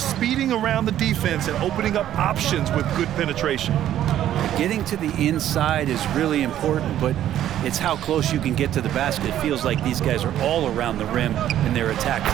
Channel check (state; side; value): quieter; left; 11.7 dB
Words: around the defense and opening up options with good penetration. Getting to the inside is really important, but it's how close you can get to the basket. It feels like these guys are all around the rim in their attack